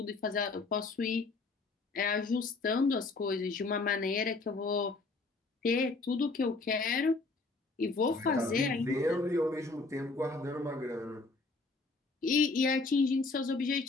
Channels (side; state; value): right; quieter; 3.7 dB